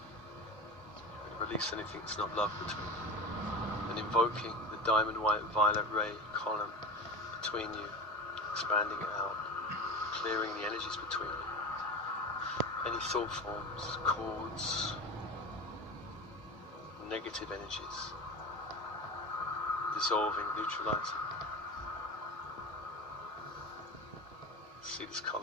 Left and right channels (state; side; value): normal; both; correlation 0.29